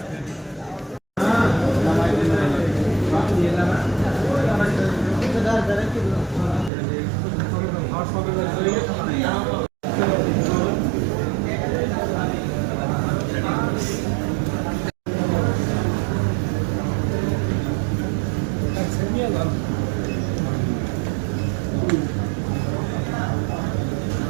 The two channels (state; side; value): drops out; left; at 6.7 s